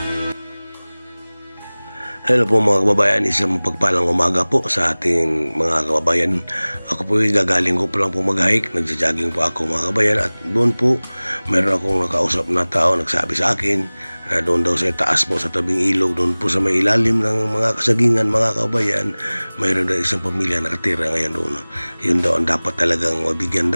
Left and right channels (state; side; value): inverted; both; correlation -1.00